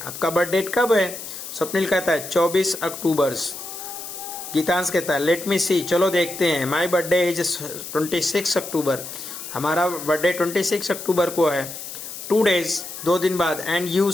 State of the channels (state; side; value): noise; left; hiss, 10 dB below the sound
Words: आपका बर्थडे कब है, स्वप्निल कहता है 24 अक्टूबर। गीतांश कहता है लेट मी सी, चलो देखते हैं, माई बर्थडे इज 26 अक्टूबर, हमारा बर्थडे 26 अक्टूबर को है। 2 days, 2 दिन बाद, and you